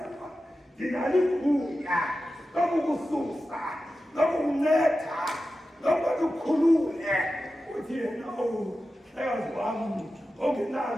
ndinalo igunya lokukususa lokukunceda lokuba ukhulule. Uthi yena hlekazi wami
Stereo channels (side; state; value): both; normal; correlation 0.93